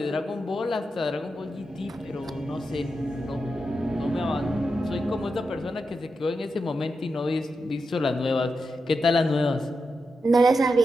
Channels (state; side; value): normal; both; correlation 0.88